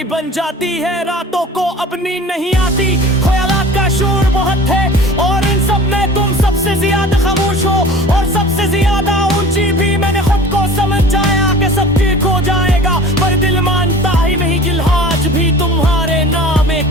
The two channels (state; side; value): normal; both; correlation 0.42